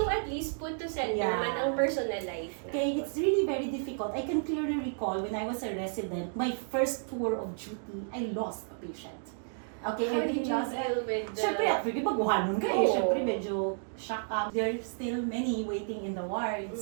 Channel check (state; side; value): silent; left; digital silence